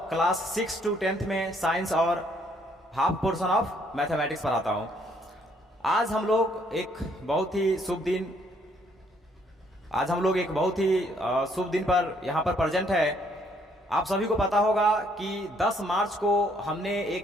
क्लास 6 to 10th में साइंस और हाफ पोर्शन ऑफ मैथमेटिक्स पढ़ाता हूँ। आज हम लोग एक बहुत ही शुभ दिन पर यहाँ पर प्रेजेंट है। आप सभी को पता होगा कि 10 मार्च को हमने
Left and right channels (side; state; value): both; normal; correlation 0.67